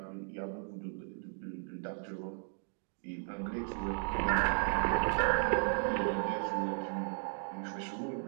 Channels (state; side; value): silent; left; 54 dB below the other